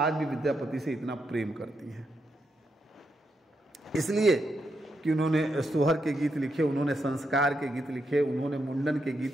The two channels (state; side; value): normal; both; correlation 0.82